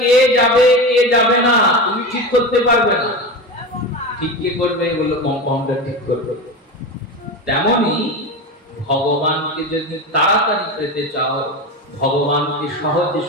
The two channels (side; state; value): both; normal; correlation 0.23